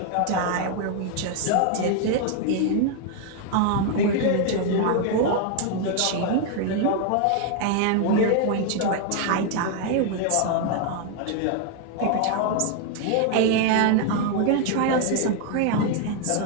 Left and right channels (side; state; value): both; different; correlation 0.00